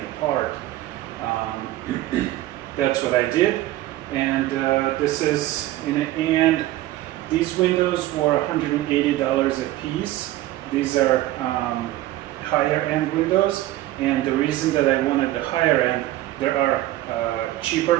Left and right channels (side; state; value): left; quieter; 15.7 dB